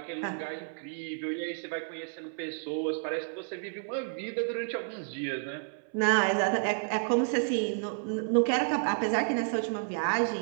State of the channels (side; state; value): left; silent; 57 dB below the other